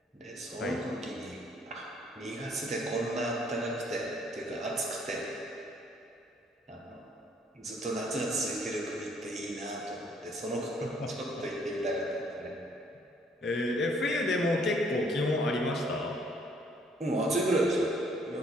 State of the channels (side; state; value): both; normal; correlation 0.64